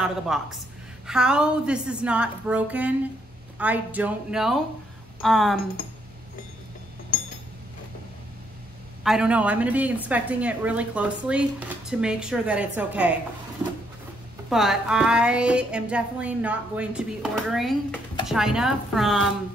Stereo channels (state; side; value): normal; both; correlation 0.73